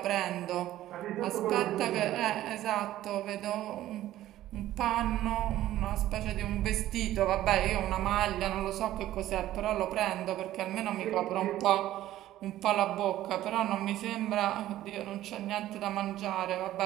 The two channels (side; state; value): left; quieter; 14.0 dB